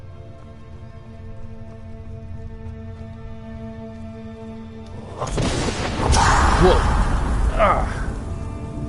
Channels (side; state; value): both; identical; correlation 1.00